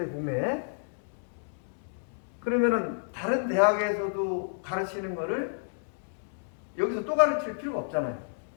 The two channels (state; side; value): silent; right; digital silence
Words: 국내에. 그러면은 다른 대학에서도 가르치는 거를 여기서 또 가르칠 필요가 없잖아요.